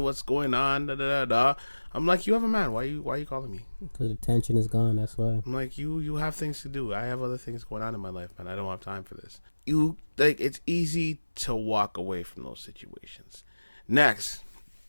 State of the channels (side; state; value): both; inverted; correlation -1.00